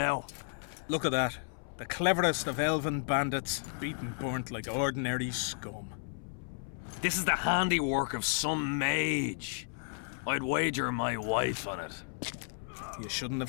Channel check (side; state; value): right; silent; 56 dB below the other